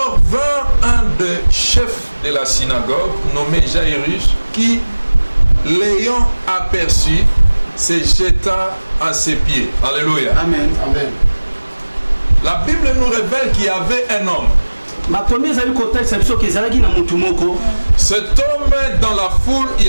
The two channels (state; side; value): inverted; both; correlation -1.00